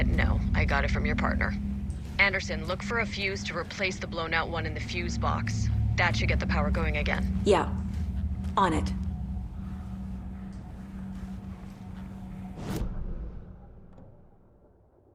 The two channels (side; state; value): both; identical; correlation 1.00